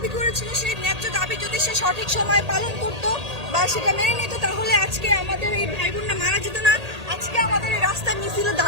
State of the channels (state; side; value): late; left; 1.8 ms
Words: করেছিল, সেই ন্যায্য দাবি যদি সে সঠিক সময় পালন করতো বা সেটা মেনে নিত তাহলে আজকে আমাদের এই ভাই বোনরা মারা যেত না, আজকে আমাদের এই রাস্তায় মিছিলে